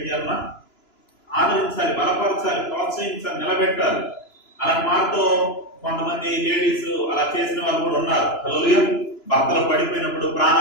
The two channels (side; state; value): right; late; 2.9 ms